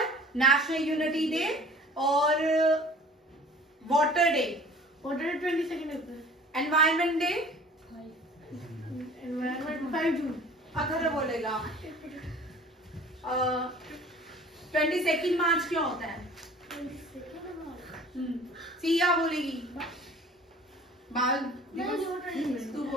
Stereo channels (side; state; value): both; normal; correlation 0.47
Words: नेशनल यूनिटी डे और वाटर डे, 22 अप्रैल, एनवायरमेंट डे, एनवायरमेंट 5 जून। अगर बोलेगा 22 मार्च क्यों होता है? सिया बोलेगी बाल दिवस। तू